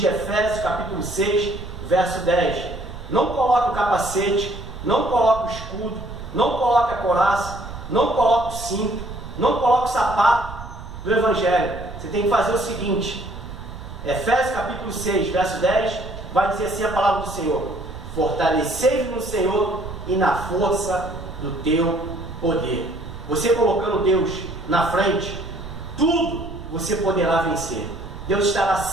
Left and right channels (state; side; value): noise; right; rumble, 12 dB below the sound